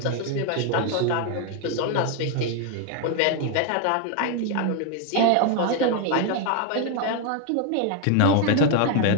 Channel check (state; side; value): different; both; correlation 0.01